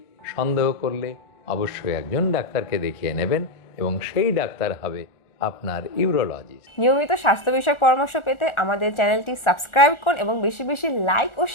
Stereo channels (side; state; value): right; late; 1.4 ms